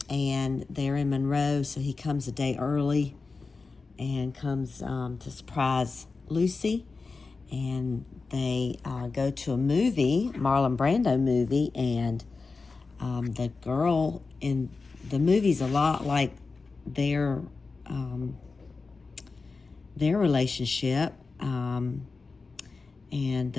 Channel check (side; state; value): right; quieter; 4.2 dB